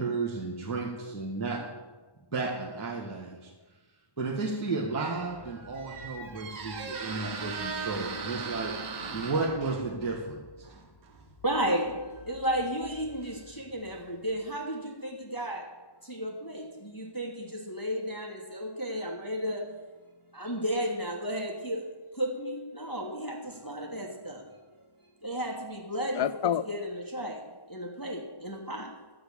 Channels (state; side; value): late; right; 1.1 ms